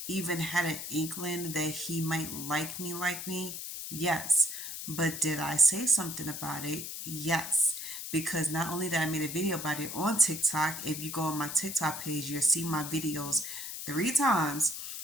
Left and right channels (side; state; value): left; noise; hiss, 7 dB below the sound